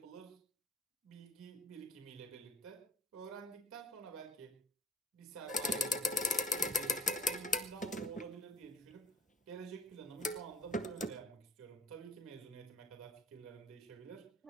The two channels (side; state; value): both; normal; correlation 0.56